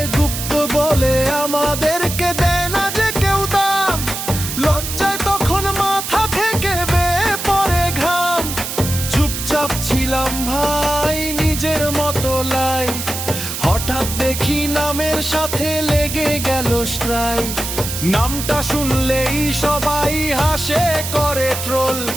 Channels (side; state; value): right; noise; hiss, 5 dB below the sound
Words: গুপ্ত বলে আমাদেরকে দেয় না যে কেউ দাম, লজ্জায় তখন মাথা থেকে বেয়ে পড়ে ঘাম। চুপচাপ ছিলাম ভাই নিজের মতো লাইফ, হঠাৎ দেখি নামের সাথে লেগে গেল স্ট্রাইক। নামটা শুনলেই সবাই হাসে করে ট্রোল,